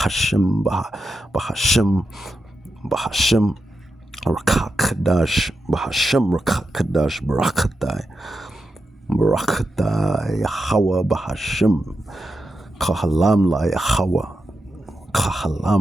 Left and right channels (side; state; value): both; normal; correlation 0.88